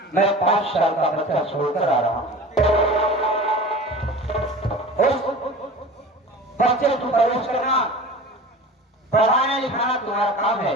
मैं 5 साल का बच्चा छोड़कर आ रहा हूँ। उस बच्चे को परवरिश करना, पढ़ाना लिखाना तुम्हारा काम है,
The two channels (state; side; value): normal; both; correlation 0.37